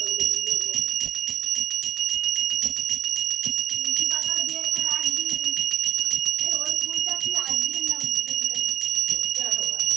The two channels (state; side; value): quieter; left; 10.9 dB